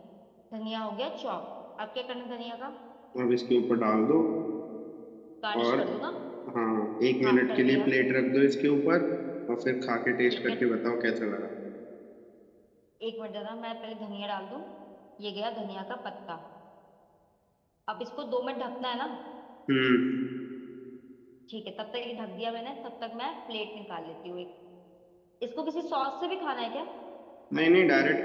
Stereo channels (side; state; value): both; identical; correlation 1.00